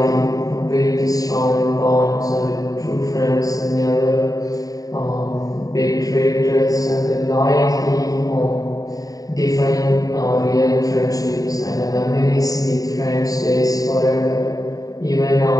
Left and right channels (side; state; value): right; late; 0.18 ms